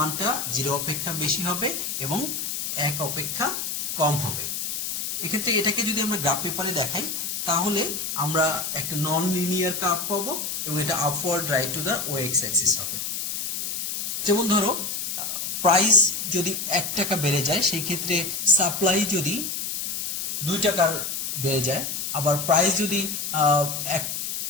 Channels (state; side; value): noise; left; hiss, 3 dB below the sound